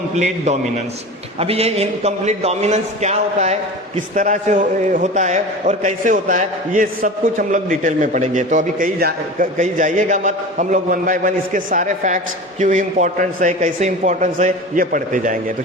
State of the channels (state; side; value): normal; both; correlation 0.32